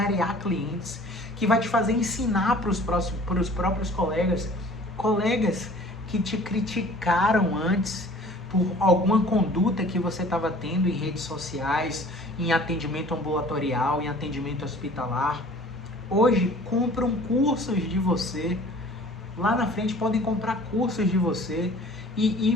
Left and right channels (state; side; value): normal; both; correlation 0.48